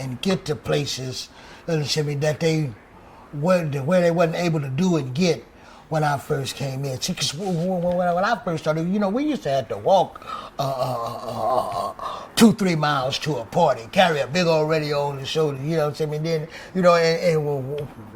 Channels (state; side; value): identical; both; correlation 1.00